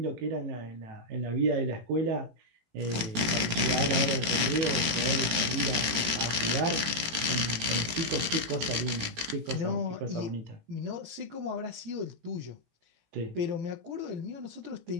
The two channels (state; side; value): late; left; 18 ms